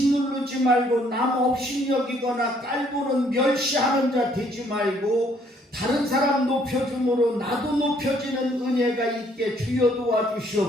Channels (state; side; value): normal; both; correlation 0.65